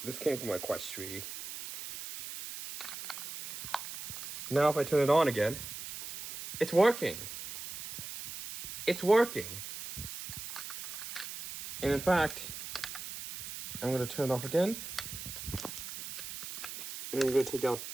my Quest 3. Now if I turn it on again, it's working. It's working. And in fact, I'm going to turn it off again. And I'm going to take out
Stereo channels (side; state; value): right; noise; hiss, 9 dB below the sound